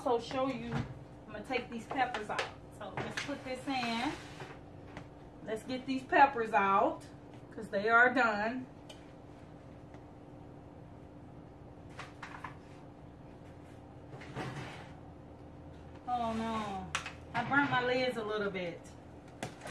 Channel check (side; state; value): both; identical; correlation 1.00